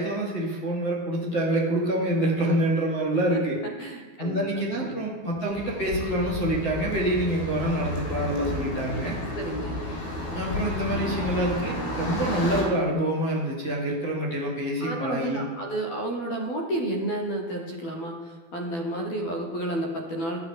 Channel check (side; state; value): right; late; 12 ms